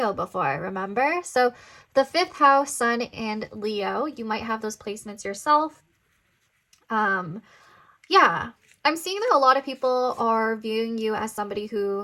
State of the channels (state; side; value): identical; both; correlation 1.00